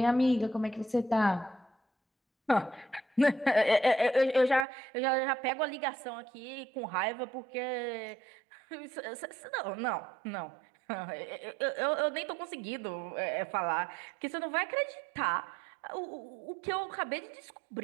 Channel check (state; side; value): drops out; left; at 4.7 s